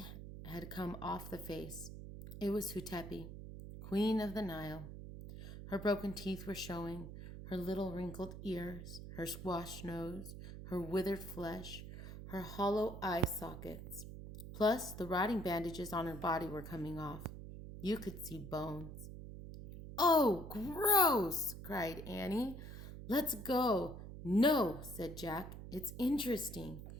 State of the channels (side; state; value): right; noise; hum, 10 dB below the sound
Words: had come off the face. It was Hutepi, Queen of the Nile. Her broken teeth were showing, her little wrinkled ears, her squashed nose, her withered flesh, her hollow eye sockets. Plus, the rotting bandages on her body were coming off. You could see bones. Oh, gross, cried Annie. Let's go. No, said Jack. It's interesting.